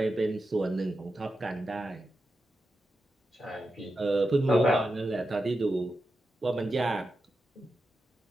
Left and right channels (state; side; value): normal; both; correlation 0.89